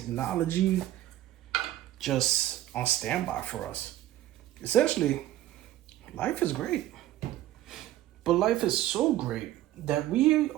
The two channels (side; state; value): left; quieter; 14.1 dB